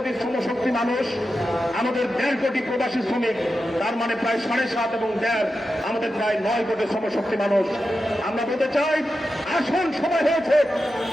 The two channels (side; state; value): both; normal; correlation 0.90